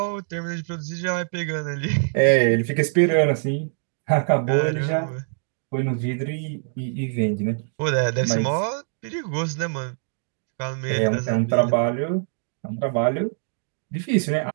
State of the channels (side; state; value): left; silent; digital silence